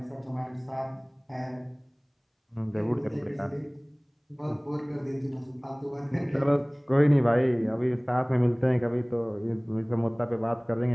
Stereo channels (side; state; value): both; identical; correlation 1.00